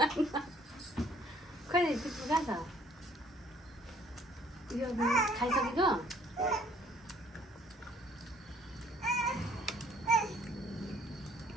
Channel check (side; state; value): both; normal; correlation 0.60